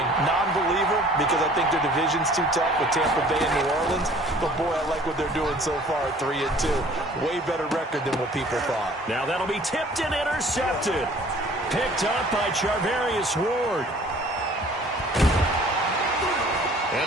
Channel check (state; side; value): normal; both; correlation 0.52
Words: Non-believer because I think their division's too tough with Tampa Bay and New Orleans. But, boy, I like what they're doing so far at 3-2. Way better record than what people thought. Now that'll be tipped and intercepted. Picked up by Charvarius Ward.